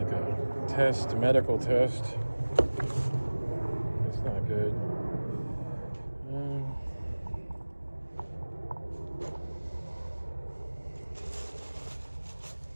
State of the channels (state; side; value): inverted; both; correlation -1.00